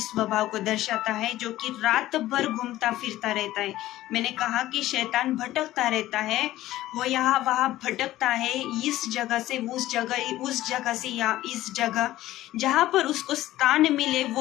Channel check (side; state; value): right; quieter; 15.2 dB